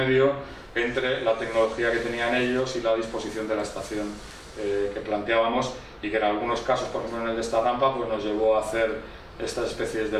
entre la tecnología que tenían ellos y la disposición de la estación que planteábamos, y que en algunos casos, por ejemplo en el de esta rampa, pues nos llevó a hacer estas especies de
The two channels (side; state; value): both; identical; correlation 1.00